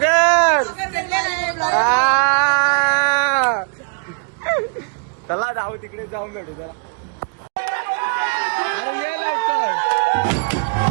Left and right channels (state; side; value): quieter; left; 36.3 dB